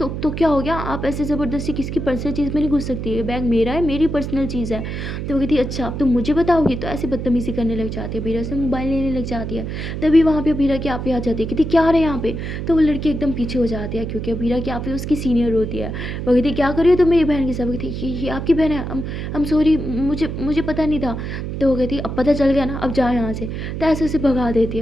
क्या हो गया, आप ऐसे ज़बरदस्ती किसी की पर्सनल चीज़ में नहीं घुस सकती है, बैग मेरा है, मेरी पर्सनल चीज़ है। तो वो कहती अच्छा अब तुम मुझे बताओगी। तो ऐसे बदतमीज़ी करने लग जाती है, अबीरा से मोबाइल लेने लग जाती है। तभी वहाँ पे अबीरा की आपी आ जाती है, कहती क्या रहे यहाँ पे। तो वो लड़की एकदम पीछे हो जाती है क्योंकि अबीरा की आपी उसकी सीनियर होती है। वो कहती क्या कर रही हो तुम मेरी बहन के साथ। वो कहती ये आपकी बहन है, हम सॉरी मुझे मुझे पता नहीं था। तो वो कहती अब पता चल गया ना, अब जाओ यहाँ से। तो ऐसे उसे भगा देती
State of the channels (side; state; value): right; noise; hum, 5 dB below the sound